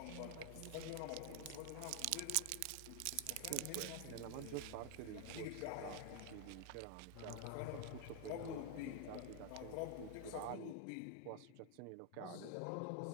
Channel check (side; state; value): both; different; correlation 0.00